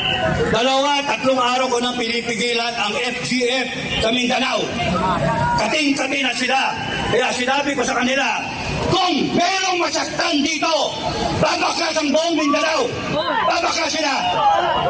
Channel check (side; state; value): both; identical; correlation 1.00